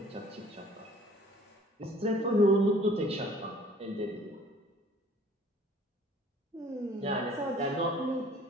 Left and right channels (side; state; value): both; normal; correlation 0.53